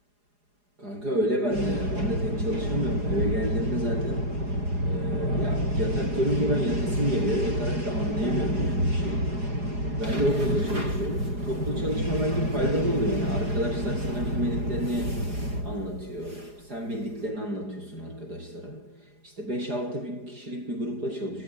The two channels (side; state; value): left; late; 4.8 ms